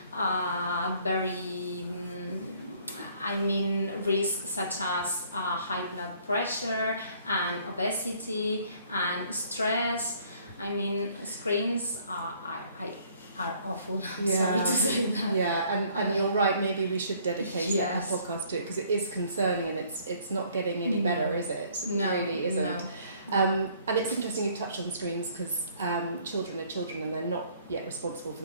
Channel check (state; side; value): inverted; both; correlation -0.60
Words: very risks such as high blood pressure and obesity and stress. I mean, screens are awful. I'm sorry to say that. Yeah, and you're right, maybe we should dedicate a podcast to it, because it is concerning, and it's not getting any better, is it? No, it really isn't. No. And it's interesting you touched on screens, because children are children and they're not yet responsible for